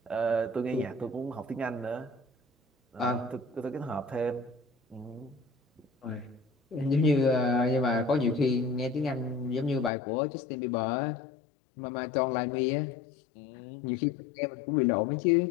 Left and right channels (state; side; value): drops out; right; at 9.9 s